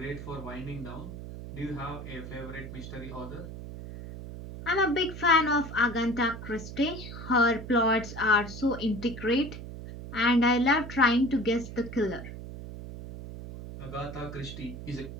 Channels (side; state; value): right; noise; hum, 10 dB below the sound